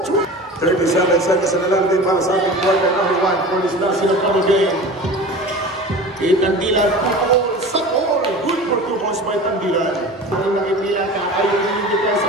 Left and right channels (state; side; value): normal; both; correlation 0.36